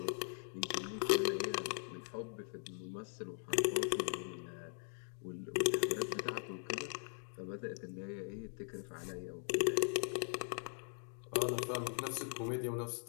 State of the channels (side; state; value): right; silent; 51 dB below the other